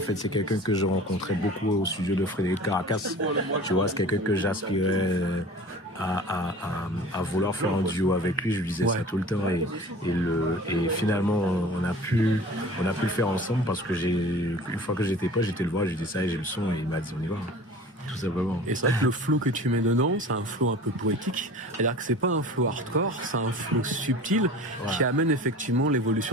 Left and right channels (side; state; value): both; normal; correlation 0.41